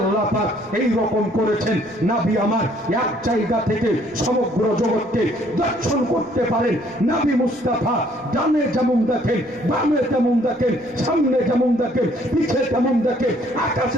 পাক এই রকম করেছেন, নবী আমার এক জায়গা থেকে সমগ্র জগৎকে দর্শন করতে পারেন। নবী মুস্তাফা ডানে যেমন দেখেন, বামে তেমন দেখেন, সামনে যেমন দেখেন, পিছে তেমন দেখেন,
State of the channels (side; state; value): left; noise; rumble, 30 dB below the sound